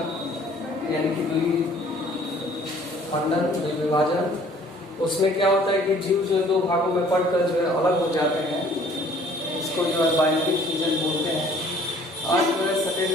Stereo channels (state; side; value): normal; both; correlation 0.55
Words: यानी कि द्विखंडन विभाजन। उसमें क्या होता है कि जीव जो दो भागों में पड़कर जो है अलग हो जाते हैं, इसको जो है बाइनरी फ्यूजन बोलते हैं। आज जो है सेकेंड